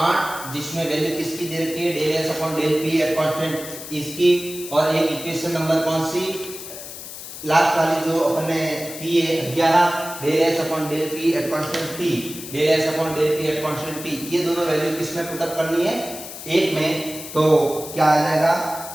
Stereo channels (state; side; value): noise; left; hiss, 11 dB below the sound